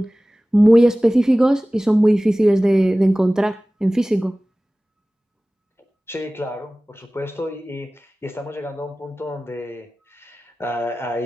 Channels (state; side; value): normal; both; correlation 0.98